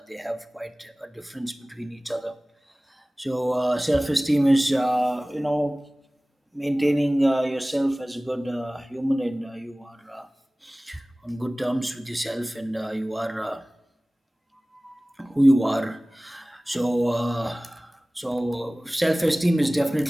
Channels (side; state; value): both; normal; correlation 0.98